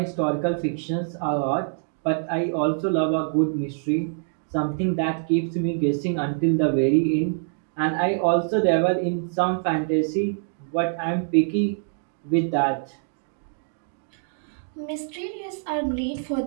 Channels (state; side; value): silent; left; digital silence